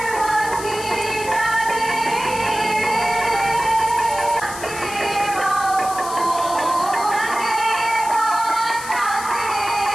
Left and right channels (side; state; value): left; noise; hiss, 11 dB below the sound